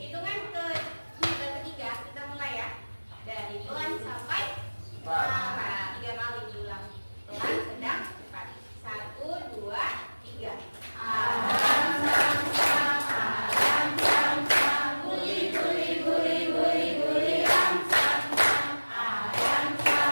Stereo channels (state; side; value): inverted; both; correlation -1.00